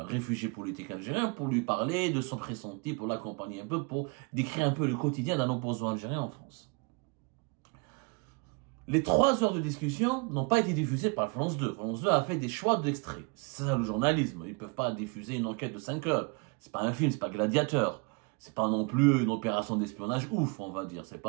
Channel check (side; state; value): left; quieter; 31.1 dB